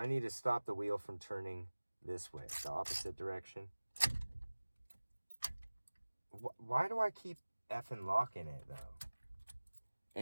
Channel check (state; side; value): inverted; both; correlation -1.00